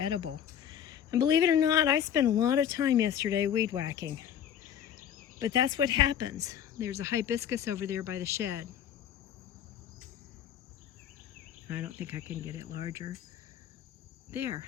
And believe it or not, I spent a lot of time yesterday weed whacking. But that's what happens. There's a hibiscus over there by the shed. I don't think I can get it larger. There,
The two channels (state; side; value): quieter; right; 9.4 dB